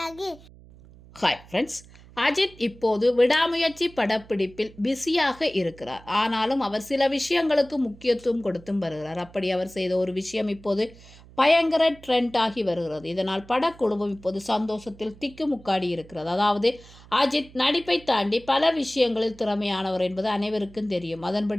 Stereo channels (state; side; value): noise; right; hum, 22 dB below the sound